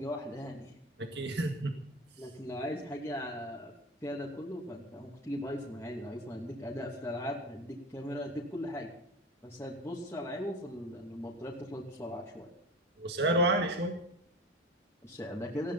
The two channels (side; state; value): both; normal; correlation 0.32